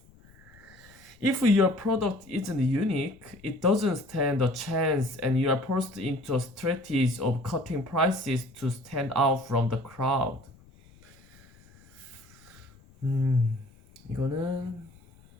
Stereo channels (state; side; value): noise; left; rumble, 26 dB below the sound